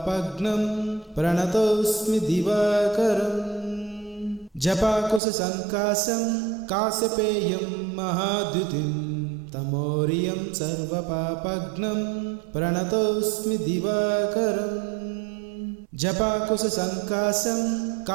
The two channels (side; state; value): left; drops out; at 5.2 s